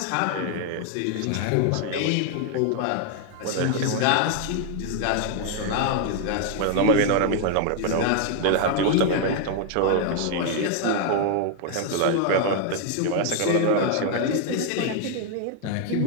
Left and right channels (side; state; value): both; different; correlation 0.00